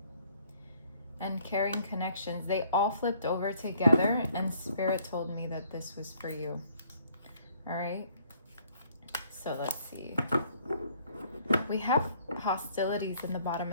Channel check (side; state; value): both; inverted; correlation -0.63